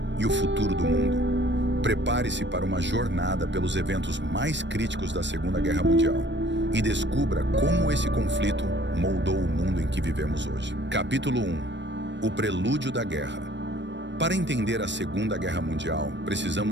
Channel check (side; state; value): left; late; 0.53 ms